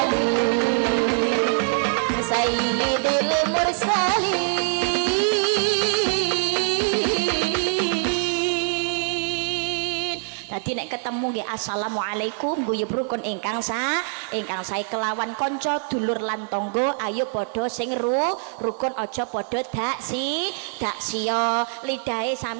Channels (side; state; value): left; silent; 58 dB below the other